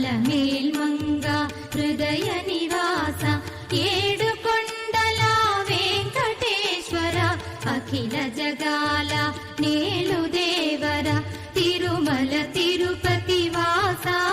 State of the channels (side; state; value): both; identical; correlation 1.00